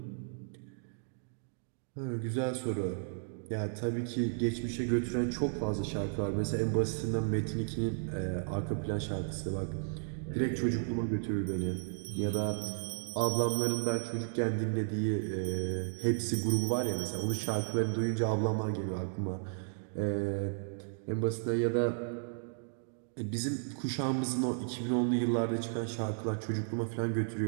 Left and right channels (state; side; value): silent; left; digital silence